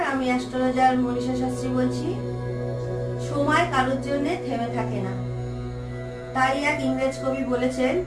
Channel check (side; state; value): both; identical; correlation 1.00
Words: আমি অ্যাস্ট্রোলজার মনীষা শাস্ত্রী বলছি। সময় কারোর জন্য থেমে থাকে না, তাই এক ইংরেজ কবি বলেছেন,